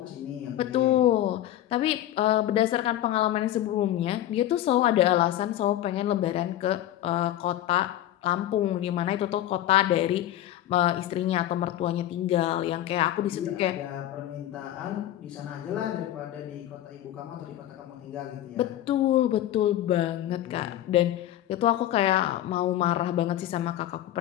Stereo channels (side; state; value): right; quieter; 12.9 dB